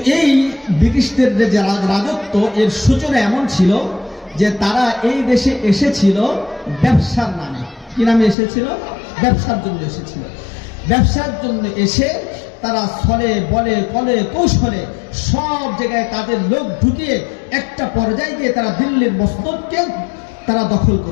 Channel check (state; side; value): drops out; right; at 8.3 s